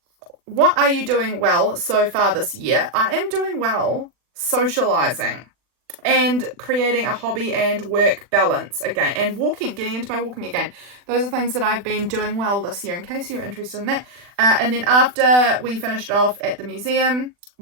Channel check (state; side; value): late; left; 40 ms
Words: well so far this year? I am doing well socializing and creating a hobby and work balance again, and getting into my walking again. Those are things that I've been doing well this year, in case you're interested in that. And then after we finished off at the museum,